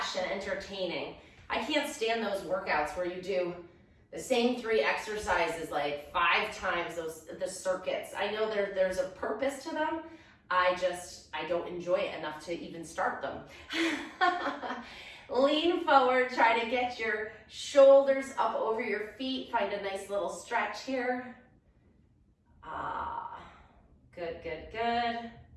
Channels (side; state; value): both; identical; correlation 1.00